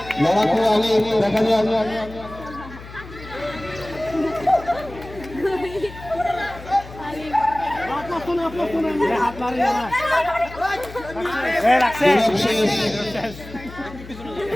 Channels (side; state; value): left; noise; hum, 16 dB below the sound